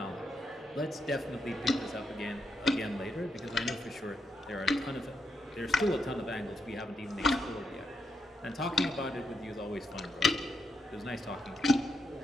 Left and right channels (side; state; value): both; normal; correlation 0.81